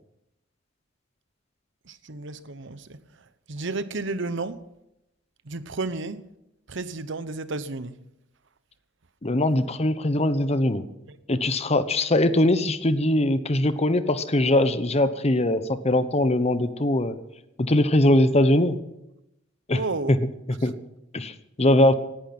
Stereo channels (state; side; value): normal; both; correlation 0.59